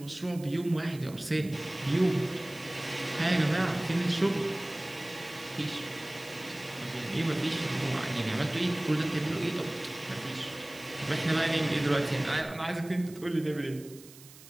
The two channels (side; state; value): right; noise; hiss, 20 dB below the sound